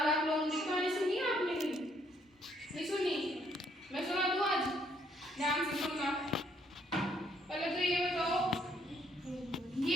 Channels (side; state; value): both; normal; correlation 0.69